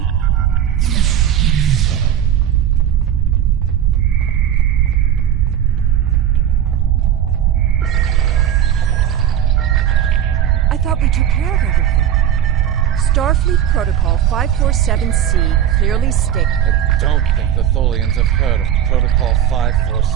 I thought we took care of everything. Starfleet Protocol 547C clearly states... I don't think the Tholians have heard of Protocol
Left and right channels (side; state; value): left; quieter; 10.1 dB